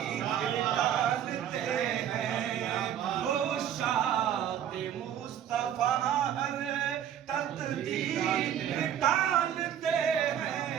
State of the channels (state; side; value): quieter; left; 10.0 dB